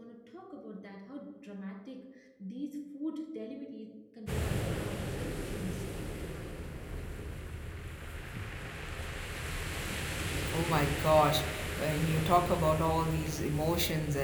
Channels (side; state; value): both; identical; correlation 1.00